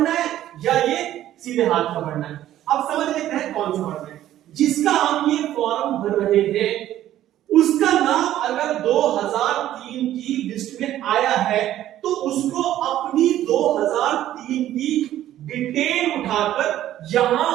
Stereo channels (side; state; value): left; quieter; 12.8 dB